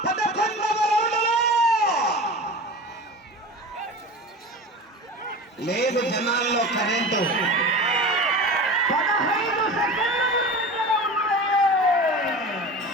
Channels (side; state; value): both; normal; correlation 0.33